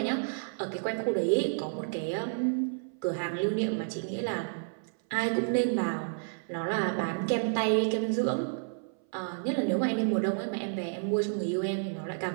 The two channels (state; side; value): silent; left; 57 dB below the other